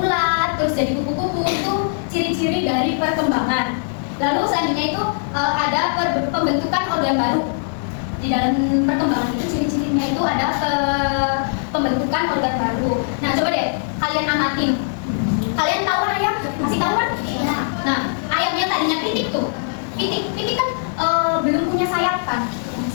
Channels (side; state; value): right; silent; digital silence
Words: terus jadi kupu-kupu, itu ciri-ciri dari perkembangan. Lalu selanjutnya itu ada pembentukan organ baru. Di dalam perkembangan itu ciri-cirinya itu ada pembentukan organ baru. Nah, coba deh kalian amatin. Kalian tahu kan ayam? Masih tahu kan? Nah, ayam yang tadinya pitik tuh. Pitik kan belum punya sayap kan?